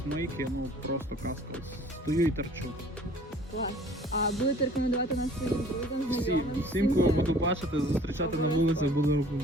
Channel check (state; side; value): normal; both; correlation 0.51